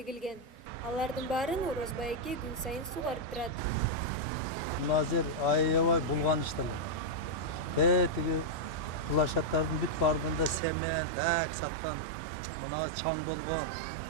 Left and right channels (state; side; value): drops out; left; at 10.6 s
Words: Алардын баарын Орозбай эке күн сайын сугарып турат. Мына жер аябай булганыштуу. Тиги площадтардын бүт баарында семен, так саткан, мына чаң болгон.